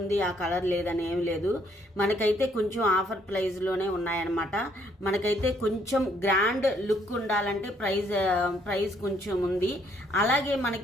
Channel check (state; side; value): normal; both; correlation 0.68